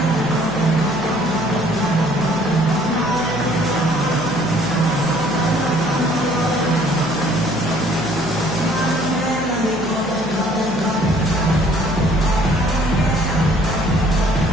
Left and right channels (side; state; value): left; noise; hum, 17 dB below the sound